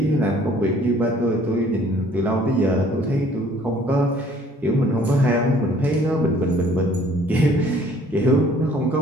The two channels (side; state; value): both; normal; correlation 0.57